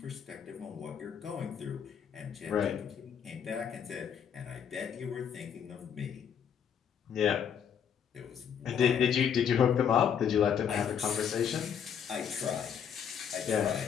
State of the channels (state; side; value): quieter; right; 8.0 dB